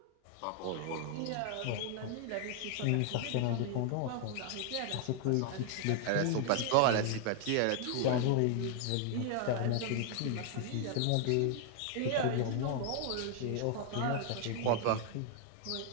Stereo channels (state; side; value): different; both; correlation 0.00